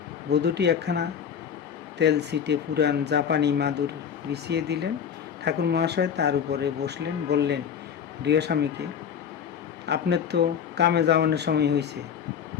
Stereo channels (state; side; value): quieter; right; 7.8 dB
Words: বধূটি একখানা তেলছিটে পুরান জাপানি মাদুর বিছিয়ে দিলেন। ঠাকুর মহাশয় তার উপরে বসলেন, বললেন গৃহস্বামীকে, আপনার তো কামে যাওয়ানোর সময় হয়েছে,